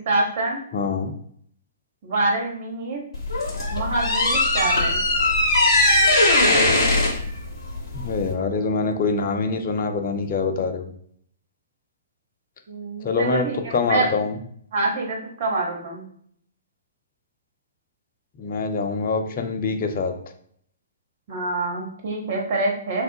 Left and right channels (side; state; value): both; inverted; correlation -0.49